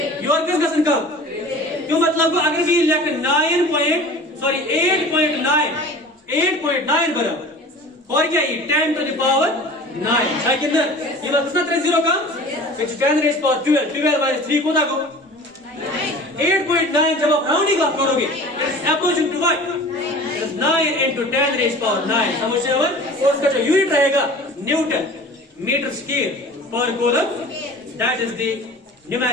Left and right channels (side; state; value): both; normal; correlation 0.41